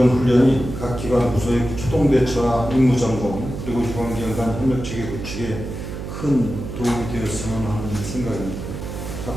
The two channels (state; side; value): noise; right; hum, 7 dB below the sound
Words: 훈련이 각 기관 부서의 초동 대처와 임무 점검 그리고 유관기관 간 협력 체계 구축에 큰 도움이 되었으면 하는 생각입니다.